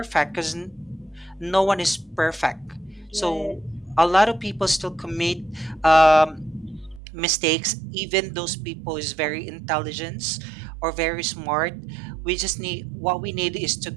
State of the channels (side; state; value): left; drops out; at 7.0 s